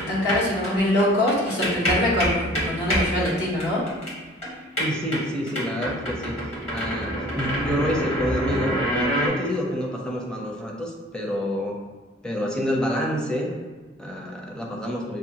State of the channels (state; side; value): normal; both; correlation 0.50